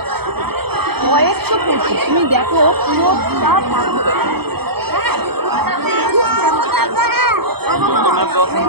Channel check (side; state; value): left; late; 0.96 ms